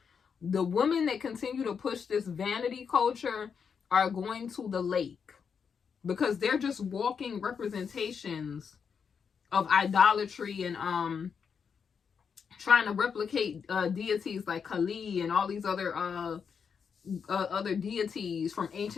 The women that continue to push this vanity culture are going to the lake, because they're just walking representations of idolatry and trying to replicate deities like Kali and all these other deities from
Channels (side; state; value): right; quieter; 6.5 dB